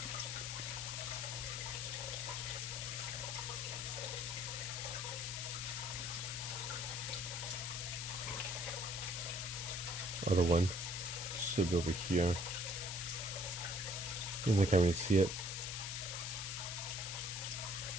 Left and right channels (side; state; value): left; noise; hiss, 4 dB below the sound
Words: Other one should be over here. I can't really see it.